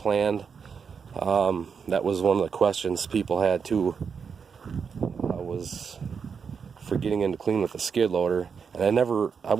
That was one of the questions people had too. I was for getting into clean with the skid loader, and I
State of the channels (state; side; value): quieter; left; 6.2 dB